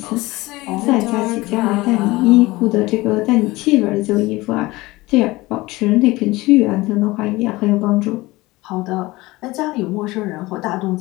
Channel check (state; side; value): quieter; right; 20.4 dB